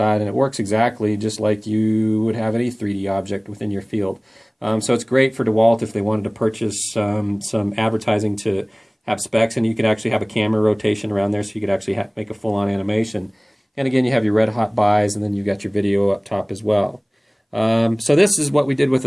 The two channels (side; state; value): both; identical; correlation 1.00